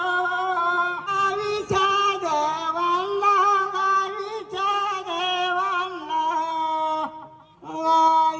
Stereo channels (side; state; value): both; identical; correlation 1.00